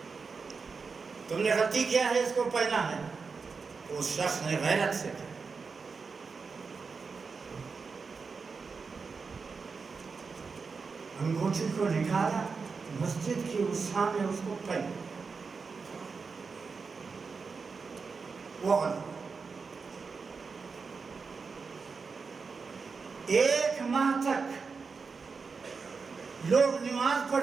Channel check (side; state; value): left; quieter; 4.9 dB